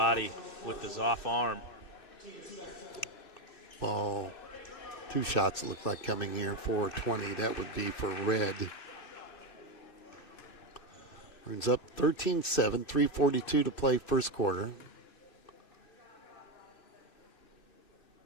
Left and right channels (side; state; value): right; late; 2.9 ms